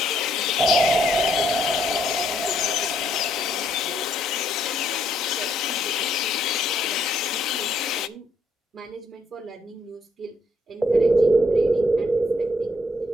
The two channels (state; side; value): normal; both; correlation 0.72